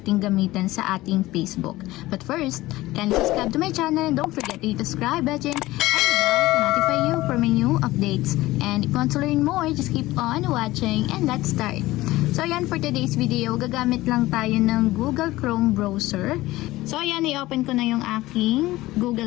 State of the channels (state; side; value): quieter; right; 17.8 dB